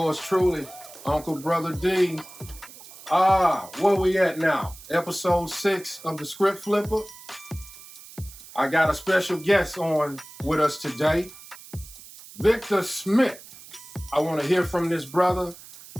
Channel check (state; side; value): noise; right; hiss, 18 dB below the sound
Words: truly, Uncle Brother D. Where we at now? Episode 6 of the Script Flipper. I got a special guest on with us today, Victor Smith. I want to hear from this brother.